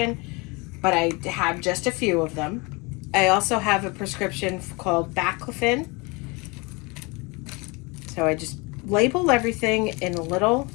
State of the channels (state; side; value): quieter; right; 27.5 dB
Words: but I have just a few of them. I also have a prescription called baclofen. So I just label everything in a little